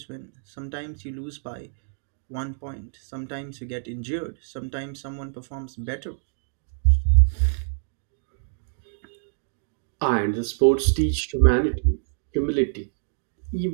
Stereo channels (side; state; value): left; silent; digital silence